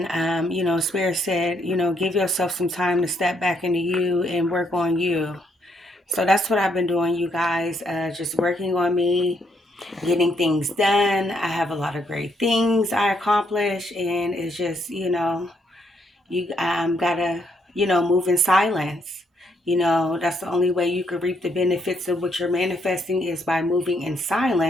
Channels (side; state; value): both; normal; correlation 0.74